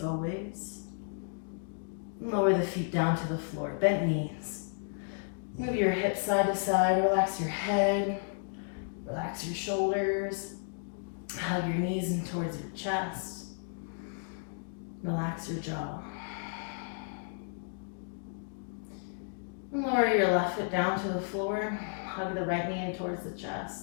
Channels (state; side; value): silent; right; digital silence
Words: always. And lower the feet down to the floor. Bent knees. Move your hips side to side. Relax your head. Relax your shoulders. Hug your knees in towards your chest. Relax your jaw. And lower your left foot down to the floor. Hug the right knee in towards the